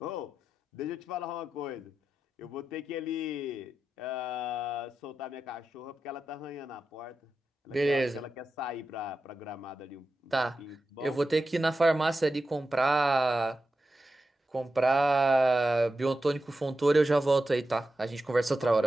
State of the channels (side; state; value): both; normal; correlation 0.91